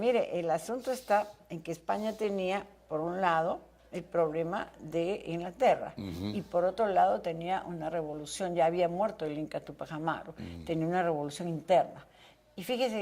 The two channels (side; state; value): both; identical; correlation 1.00